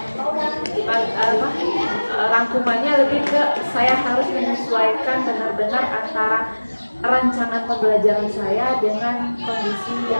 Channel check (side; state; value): both; inverted; correlation -1.00